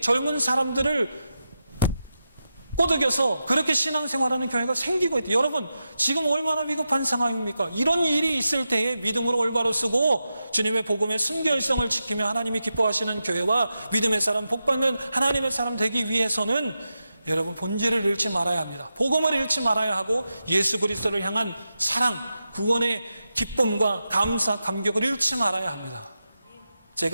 젊은 사람들을 꼬드겨서 그렇게 신앙생활하는 교회가 생기고 있다. 여러분, 지금 얼마나 위급한 상황입니까? 이런 일이 있을 때에 믿음으로 올바로 쓰고 주님의 복음의 순결성을 지키며 하나님이 기뻐하시는 교회와 믿음의 사람, 복받는 하나님의 사람 되기 위해서는 여러분, 본질을 잃지 말아야 합니다. 복음을 잃지 말아야 하고 예수 그리스도를 향한 사랑, 구원의 기쁨과 감사, 감격을 잃지 말아야 합니다.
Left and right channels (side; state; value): both; inverted; correlation -0.90